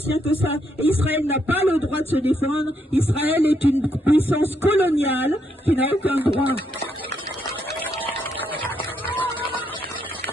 que ça. Et Israël n'a pas le droit de se défendre. Israël est une puissance coloniale qui n'a aucun droit.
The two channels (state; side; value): normal; both; correlation 0.76